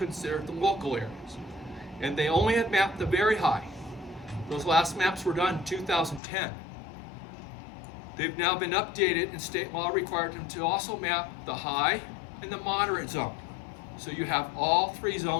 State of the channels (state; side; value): drops out; right; at 6.2 s